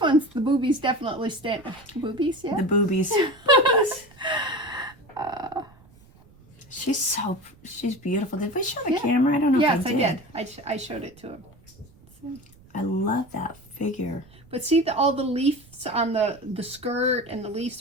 one's the boobies definitely stand. Boobies, yeah. The boobies. She's beautiful. Did we show the camera? I don't know Yes, if I I did. I showed it to him. I love that figure. But see all the leaves on the skirt and the leaves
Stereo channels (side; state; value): right; noise; rumble, 26 dB below the sound